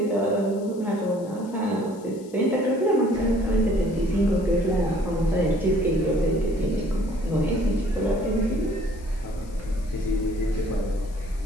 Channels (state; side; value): noise; left; hiss, 25 dB below the sound